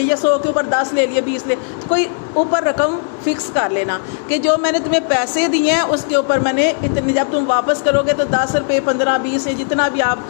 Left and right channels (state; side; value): silent; right; 59 dB below the other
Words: یا 100 کے اوپر 10 لے لیے، 20 لے، کوئی اوپر رقم فکس کر لینا کہ جو میں نے تمہیں پیسے دیے ہیں اس کے اوپر میں نے اتنے، جب تم واپس کرو گے تو 10 روپے 15 20 جتنا بھی آپ